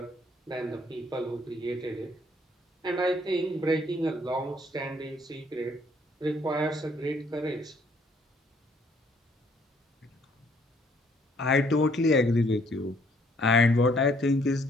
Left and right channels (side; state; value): both; normal; correlation 0.64